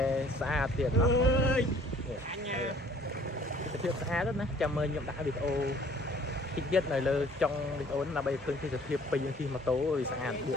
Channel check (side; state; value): both; normal; correlation 0.55